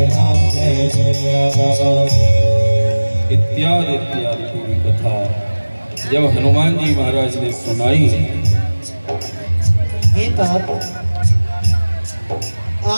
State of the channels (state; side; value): inverted; both; correlation -1.00